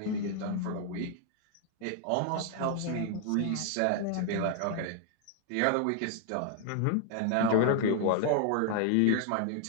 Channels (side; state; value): both; different; correlation 0.00